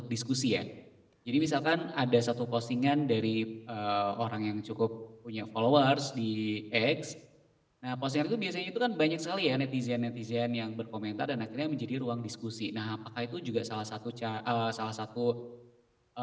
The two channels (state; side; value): identical; both; correlation 1.00